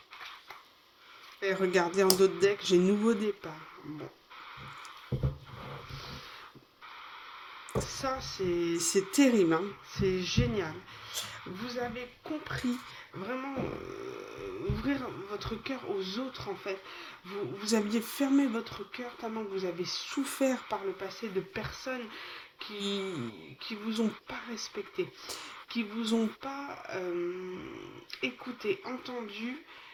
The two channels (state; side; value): identical; both; correlation 1.00